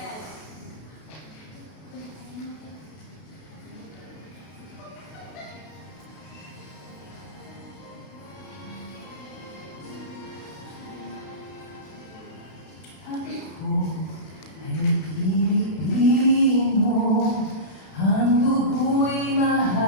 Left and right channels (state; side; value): late; right; 32 ms